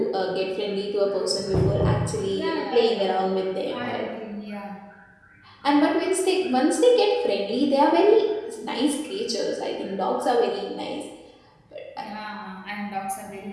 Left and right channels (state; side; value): identical; both; correlation 1.00